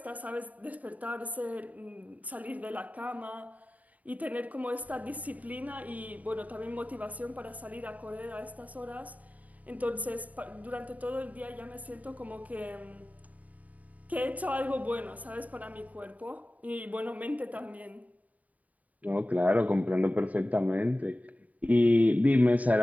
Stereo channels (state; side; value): late; left; 0.073 ms